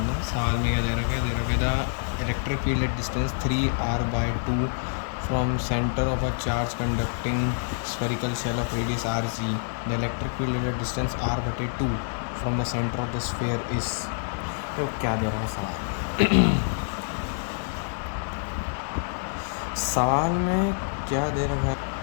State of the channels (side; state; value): right; silent; digital silence